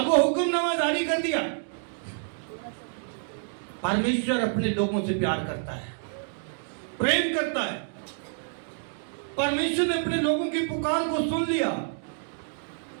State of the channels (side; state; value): left; silent; digital silence